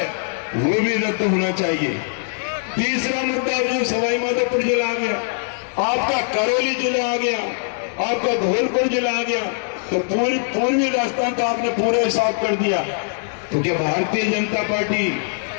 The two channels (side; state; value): right; silent; digital silence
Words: वो भी रद्द होना चाहिए। तीसरा मुद्दा जो सवाई माधोपुर जिला आ गया, आपका करौली जिला आ गया, आपका धौलपुर जिला आ गया, तो पूर्वी राजस्थान का आपने पूरा हिसाब कर दिया। तो क्या भारतीय जनता पार्टी